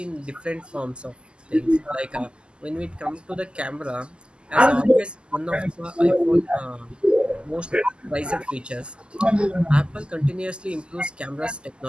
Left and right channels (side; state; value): left; late; 0.050 ms